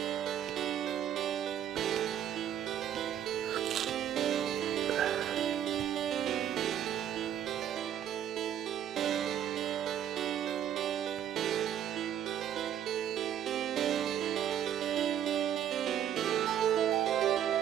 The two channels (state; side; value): quieter; left; 10.1 dB